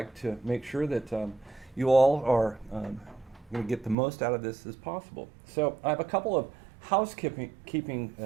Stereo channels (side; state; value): left; drops out; at 4.0 s